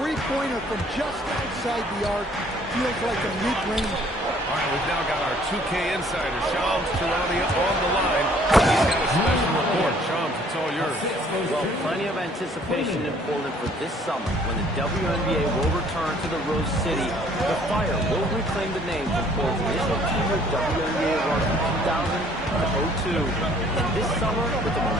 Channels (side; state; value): both; normal; correlation 0.59